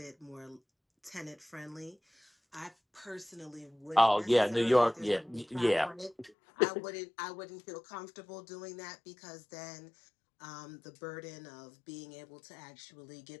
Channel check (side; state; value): right; drops out; at 6.3 s